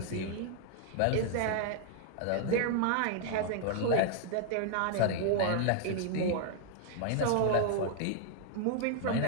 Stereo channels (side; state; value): both; different; correlation 0.00